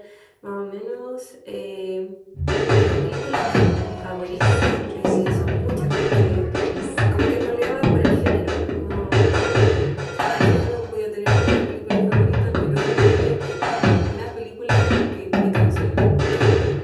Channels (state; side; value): identical; both; correlation 1.00